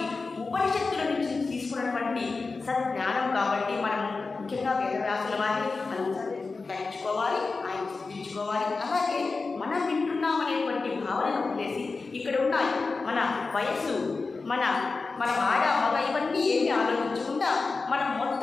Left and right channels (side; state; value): right; quieter; 4.1 dB